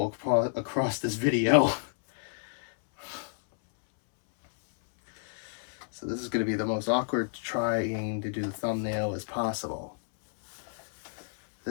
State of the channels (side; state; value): right; silent; 58 dB below the other